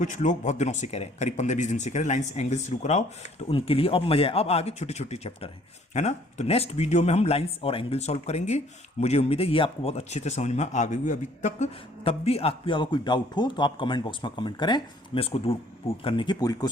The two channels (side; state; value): both; normal; correlation 0.59